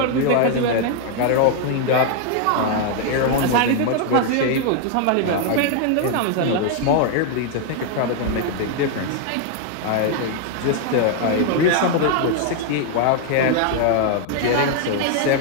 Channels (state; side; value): different; both; correlation 0.00